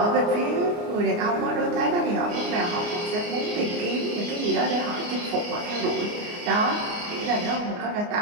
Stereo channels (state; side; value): late; left; 29 ms